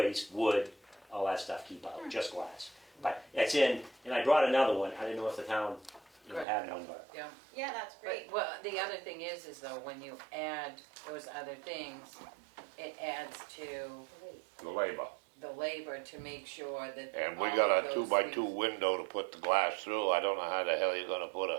wood, all that stuff. Keep out, just glass. But it's in, and I brought another one. I didn't know if the town Good. had one, but Yeah. Yeah, that's great. But, well, the other thing is though, when you add those other things, it adds to The labor. the labor to make sure that. And we all got of a those 2x2 things- window to put the glass through. I don't know how the hell you're gonna put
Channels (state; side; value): drops out; left; at 6.5 s